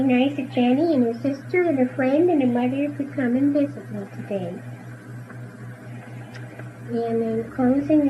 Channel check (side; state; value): both; identical; correlation 1.00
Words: nice that Jennie and her sister and her friend and her mother could come and visit me today. And in closing,